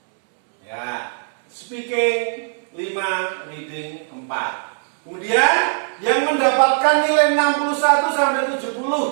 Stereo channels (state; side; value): silent; left; 63 dB below the other